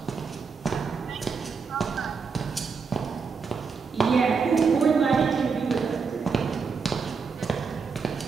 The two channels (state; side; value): quieter; left; 5.3 dB